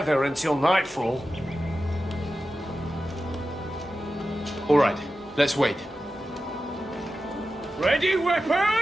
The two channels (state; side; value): normal; both; correlation 0.93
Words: until nightfall. All right, let's wait. Ready,